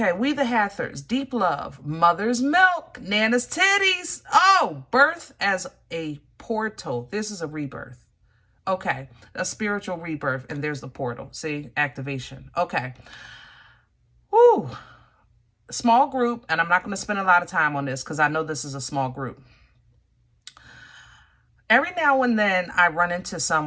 we the Hathors, deep love, mother's milk, Nana's titties. Oh, birth as a portal. This is a rebirth. Okay, a spiritual rebirth, and there's the portal. See, activation. Okay. Whew. Small group, and I'm not going to spend a lot of time on this because I know this is a small group. Every now and then I run into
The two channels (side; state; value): both; identical; correlation 1.00